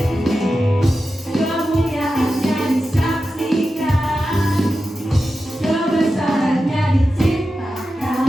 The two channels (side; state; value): both; normal; correlation 0.91